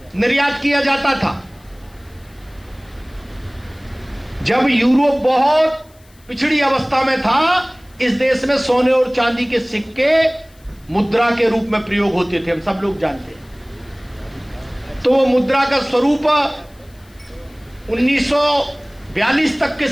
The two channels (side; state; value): left; noise; hiss, 30 dB below the sound